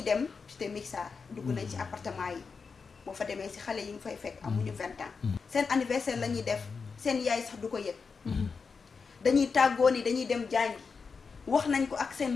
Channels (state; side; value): quieter; right; 5.1 dB